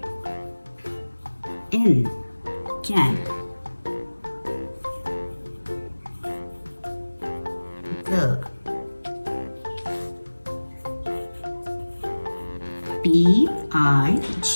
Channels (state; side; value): inverted; both; correlation -1.00